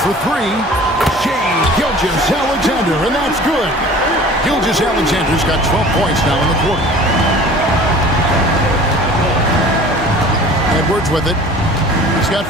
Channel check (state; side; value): normal; both; correlation 0.45